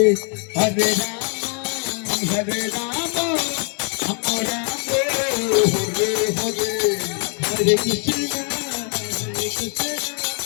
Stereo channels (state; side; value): quieter; right; 39.7 dB